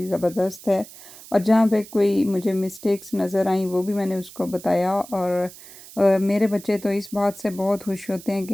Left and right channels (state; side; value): noise; right; hiss, 18 dB below the sound